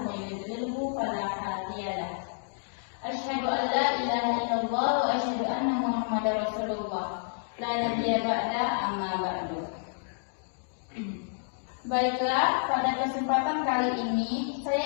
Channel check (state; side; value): silent; right; digital silence